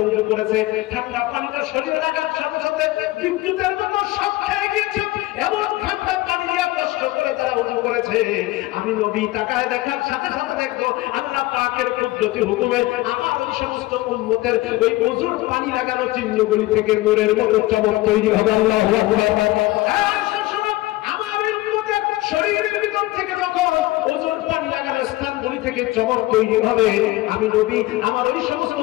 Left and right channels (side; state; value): right; quieter; 18.8 dB